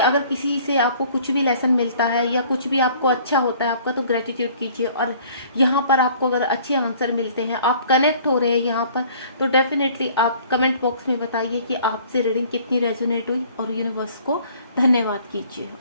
किसी से आपको कुछ भी लेसन मिलता है या कुछ भी आपको अच्छा होता है आपका, तो ग्रेटिट्यूड कीजिए। और यहाँ पर आपको अगर अच्छे आंसर मिलते हैं, आप कनेक्ट हो रहे हैं यहाँ पर, तो डेफिनेटली आप कमेंट बॉक्स में बताइए कि आपसे रीडिंग कितनी रेजोनेट हुई और यूनिवर्स को धन्यवाद कीजिए।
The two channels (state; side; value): inverted; both; correlation -0.54